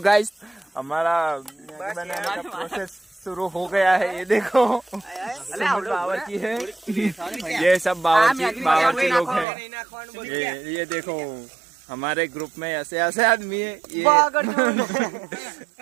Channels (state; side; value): drops out; left; at 9.5 s